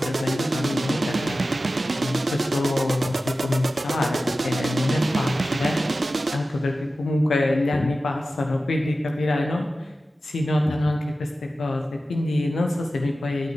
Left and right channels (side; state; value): both; normal; correlation 0.94